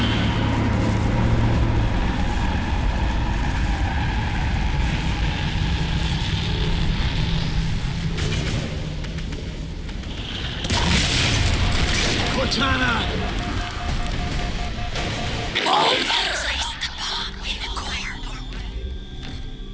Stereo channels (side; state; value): both; identical; correlation 1.00